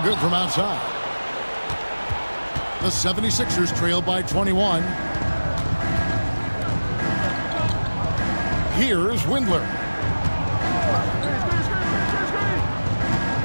good from outside. The 76ers trail by 21. Here's Windler.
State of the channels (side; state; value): both; inverted; correlation -1.00